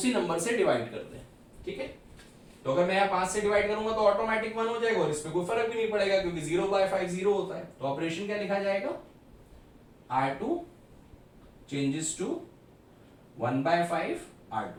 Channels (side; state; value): both; identical; correlation 1.00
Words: नंबर से डिवाइड कर दें, ठीक है। तो अगर मैं यहाँ 5 से डिवाइड करूंगा तो ऑटोमेटिक 1 हो जाएगा और इसमें कोई फर्क भी नहीं पड़ेगा, क्योंकि 0/5 0 होता है। तो ऑपरेशन क्या लिखा जाएगा, R2 चेंजेस टू 1/5